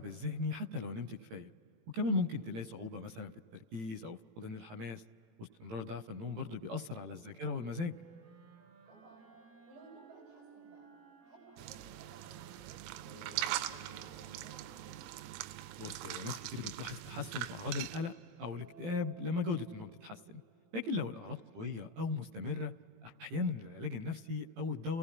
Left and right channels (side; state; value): left; late; 18 ms